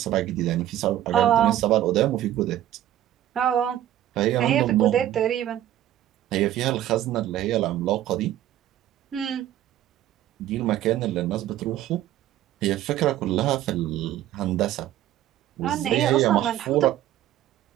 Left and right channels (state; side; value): quieter; left; 12.7 dB